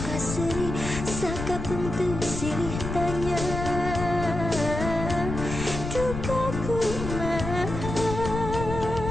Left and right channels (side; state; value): left; noise; rumble, 6 dB below the sound